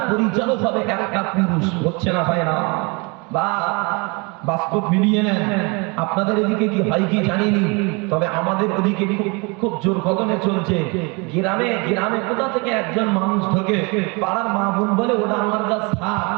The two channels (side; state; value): left; quieter; 29.4 dB